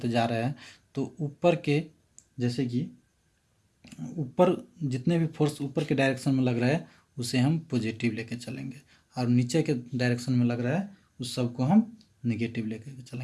जा रहे हैं तो ऊपर के, जैसे कि ऊपर जितने भी फोर्स ऊपर के डायरेक्शन में लग रहा है उसे हम पॉजिटिव लेके चलेंगे, और नीचे के डायरेक्शन में लग रहा है उस सब को हम नेगेटिव लेके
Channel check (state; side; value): identical; both; correlation 1.00